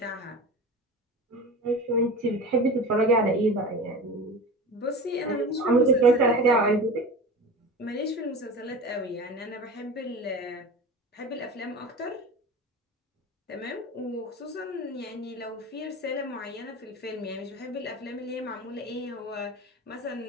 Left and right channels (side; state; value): both; normal; correlation 0.32